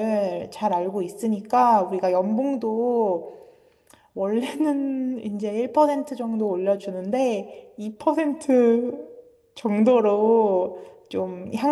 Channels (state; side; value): identical; both; correlation 1.00